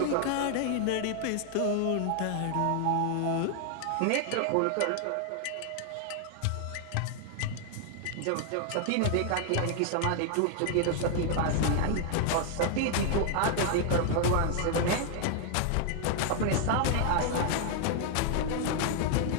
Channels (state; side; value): different; both; correlation 0.00